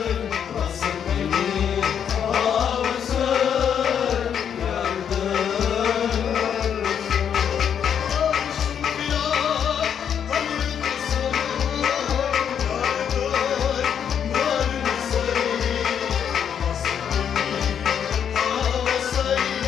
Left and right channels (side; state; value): right; quieter; 8.3 dB